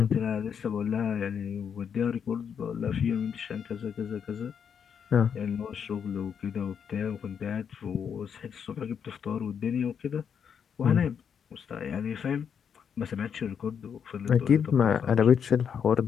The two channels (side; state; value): right; quieter; 7.4 dB